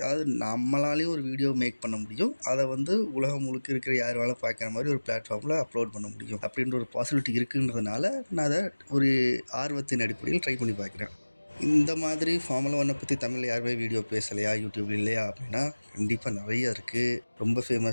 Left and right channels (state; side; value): inverted; both; correlation -1.00